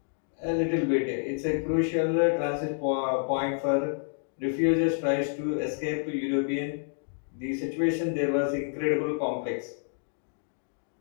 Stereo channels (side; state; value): right; silent; 59 dB below the other